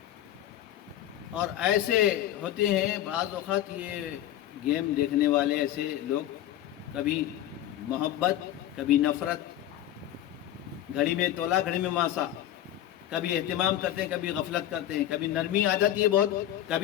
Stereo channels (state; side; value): quieter; right; 12.5 dB